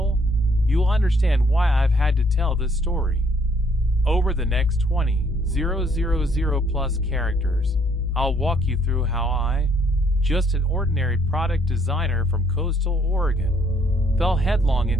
you'll understand why I've had to tell this story. Over the next 20,000 plus characters, I'll walk you through how I, just an ordinary product designer from coastal Oregon, fell headlong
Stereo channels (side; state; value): both; normal; correlation 0.66